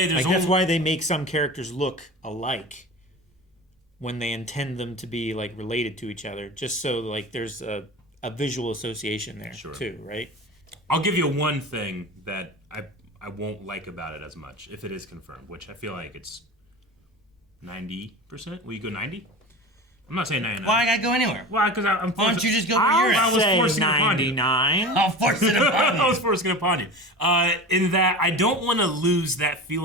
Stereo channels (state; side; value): normal; both; correlation 0.32